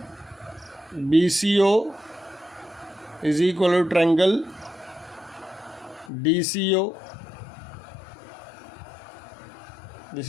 BCO is equal to triangle DCO. This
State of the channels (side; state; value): right; drops out; at 6.1 s